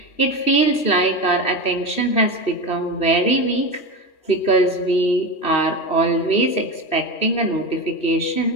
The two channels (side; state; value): right; late; 2.6 ms